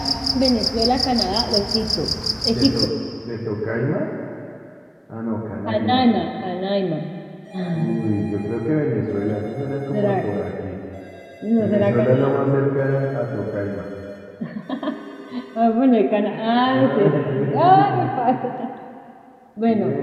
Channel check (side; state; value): both; identical; correlation 1.00